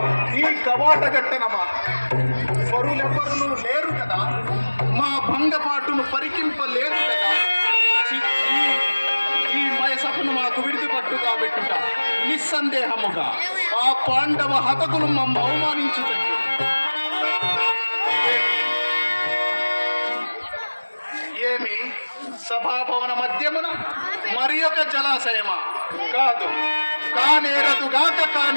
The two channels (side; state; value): both; inverted; correlation -1.00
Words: ఈ కవాట గట్టనమా? పరులెవ్వరును లేరు కదా, మా భంగపాటును పరికింపలేదు కదా. ఈ మయసభను మాకు విడిదిపట్టు కాబెట్టుట నిస్సందేహముగా ఆ పాండవ హతకులు మమ్మ అవమానించుటట్టు. ఏమి సభాభవన మధ్యమున మరి ఒక జలాశయమా? కాదు,